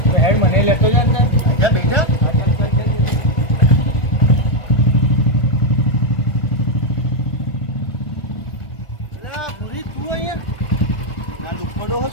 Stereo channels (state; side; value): late; right; 1.4 ms